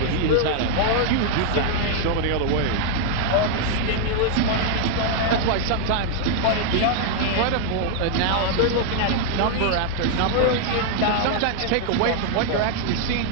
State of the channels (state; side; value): different; both; correlation 0.00